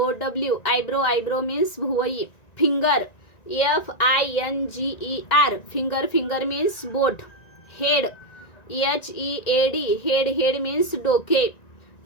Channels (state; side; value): late; right; 1.9 ms